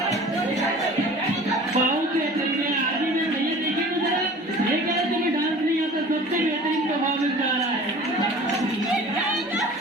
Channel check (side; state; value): both; normal; correlation 0.43